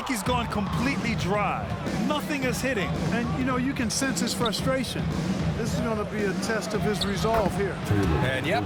he's gone completely dry. Nothing is hitting. And, you know, you can sense his frustration. This is going to be a test of his resolve here. And, yep,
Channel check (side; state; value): both; identical; correlation 1.00